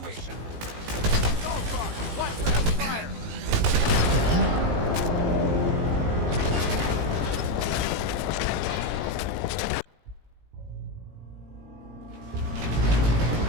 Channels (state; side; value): late; left; 18 ms